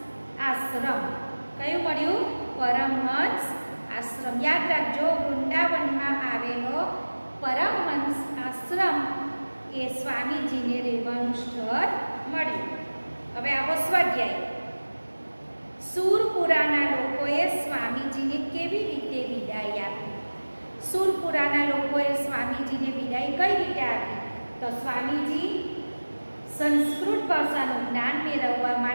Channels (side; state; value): both; inverted; correlation -1.00